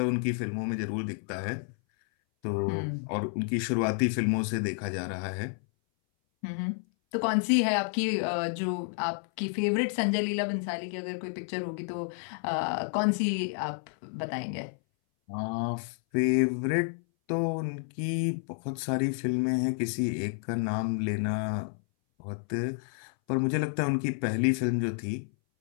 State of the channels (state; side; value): silent; right; 58 dB below the other